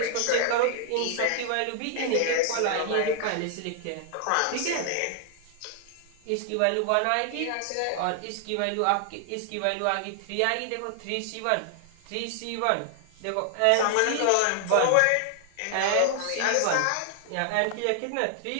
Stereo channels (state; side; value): different; both; correlation 0.00